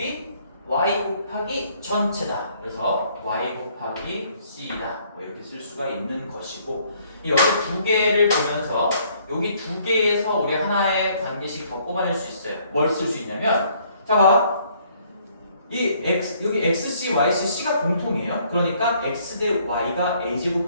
y 곱하기 전체다. 그래서 y 곱하기 c다. 뭐 이렇게 쓸 수가 있는 것이고, 여기 두 개를 보면서 여기 두 개에서 우리 하나의 관계식 더 뽑아낼 수 있어요. 뭘 쓸 수 있냐면, 자 봐. 이 x 여기 xc, yc, c가 공통이에요. 그러니까 x 대 y가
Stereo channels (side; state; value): both; inverted; correlation -0.64